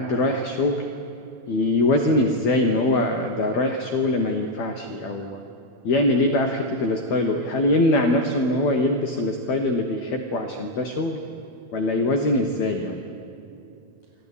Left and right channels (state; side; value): late; right; 8.9 ms